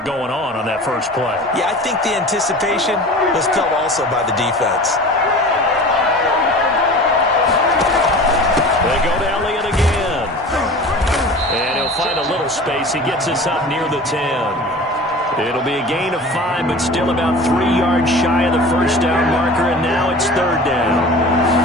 going on that first play. Yeah, I think the anticipation was felt also by the defense. They go to Elliott again. And he'll find a little space. He gets us up near the 10. It'll be a gain of 5, but still about 3 yards shy of the 1st down marker, and now it's 3rd down.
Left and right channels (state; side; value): normal; both; correlation 0.38